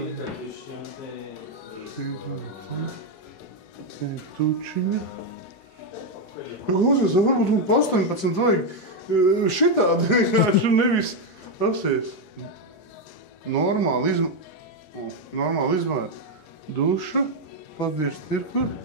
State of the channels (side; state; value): right; late; 4.6 ms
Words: Te ir tučiņa. Klausies, varbūt man pa 18 vajag šitādi vienkārši nevis apsies. Normāli izmēr. Duša, padirst ir kur.